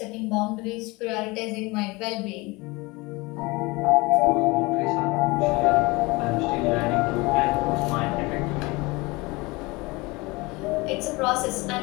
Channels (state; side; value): quieter; right; 24.0 dB